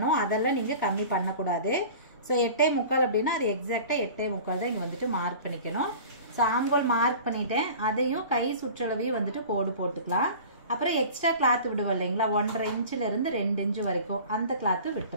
அதெல்லாம் நீங்கள் கம்மி பண்ணக்கூடாது. ஸோ 8.75 அப்படின்னா அது எக்ஸாக்டாக 8.75 தான் இங்கே வந்துட்டு மார்க் பண்ணிக்கணும். ஸோ ஆம்போல் மார்க் பண்ணிட்டேன். அதையும் கை சுற்றளவையும் வந்துட்டு கோடு போட்டுக்கலாம். அப்புறம் எக்ஸ்ட்ரா கிளாத் விடுவோம் இல்லைங்களா, 1.5 இன்ச்சிலேருந்து 2 இன்ச்சு வரைக்கும் அந்த கிளாத்து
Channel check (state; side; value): inverted; both; correlation -0.40